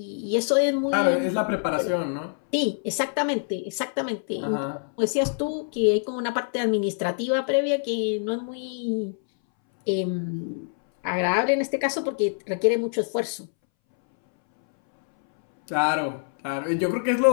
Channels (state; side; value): silent; right; 62 dB below the other